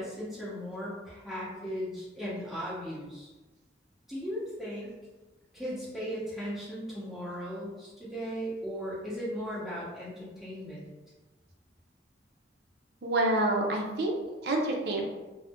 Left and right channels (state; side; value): normal; both; correlation 0.28